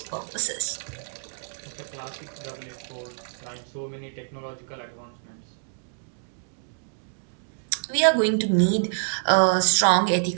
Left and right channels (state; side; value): silent; left; digital silence